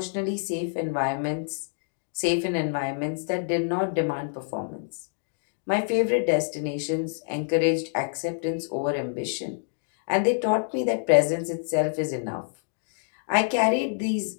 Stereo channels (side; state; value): right; silent; digital silence